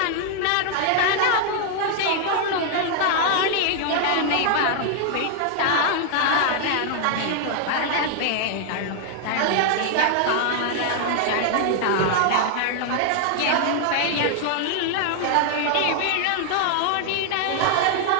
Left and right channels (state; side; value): different; both; correlation 0.00